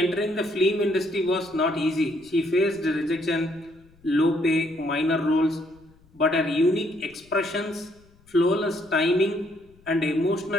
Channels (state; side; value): noise; left; rumble, 29 dB below the sound